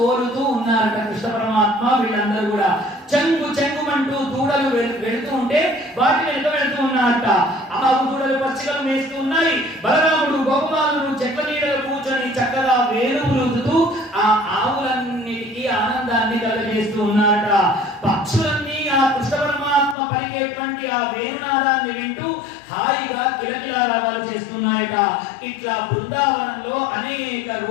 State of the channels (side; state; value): right; drops out; at 20.0 s